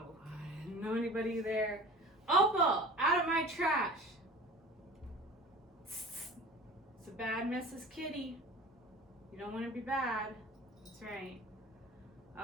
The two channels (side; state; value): both; normal; correlation 0.40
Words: I didn't know anybody there. Opal, out of my trash! It's a bad Mrs. Kitty. You don't want to be bad. That's right.